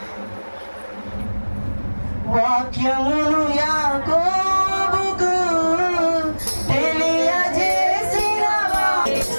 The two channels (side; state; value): both; inverted; correlation -1.00